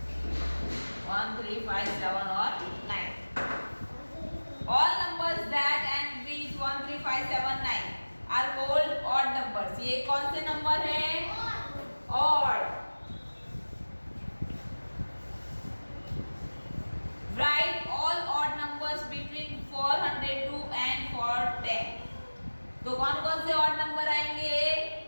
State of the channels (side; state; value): both; inverted; correlation -1.00